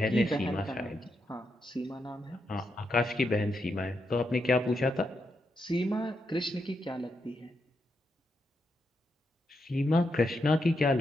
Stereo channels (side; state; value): both; normal; correlation 0.83